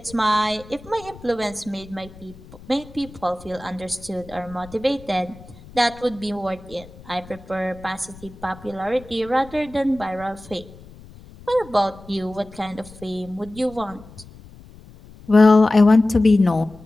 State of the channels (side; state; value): left; noise; rumble, 20 dB below the sound